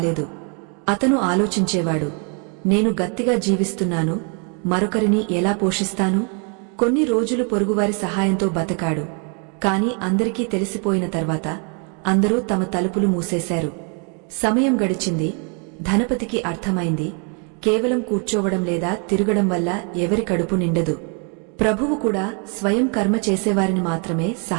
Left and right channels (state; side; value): quieter; left; 37.8 dB